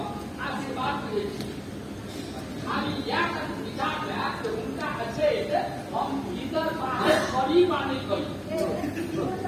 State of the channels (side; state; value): both; identical; correlation 1.00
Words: आशीर्वाद दे खाली या विचार है तो उनका अच्छे हम इधर बाहर खड़ी माने गई